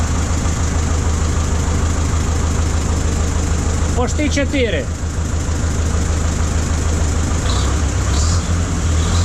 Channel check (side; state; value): both; identical; correlation 1.00